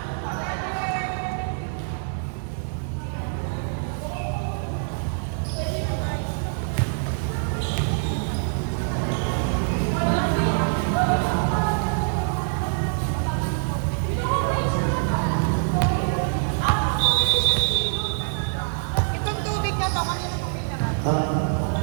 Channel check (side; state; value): left; silent; digital silence